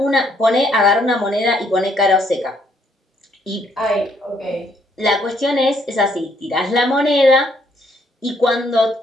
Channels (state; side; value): normal; both; correlation 0.69